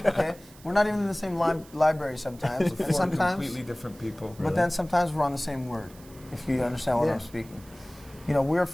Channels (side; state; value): right; noise; hiss, 23 dB below the sound